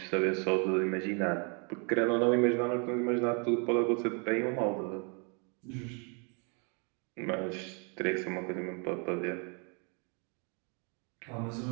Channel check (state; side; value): quieter; left; 36.3 dB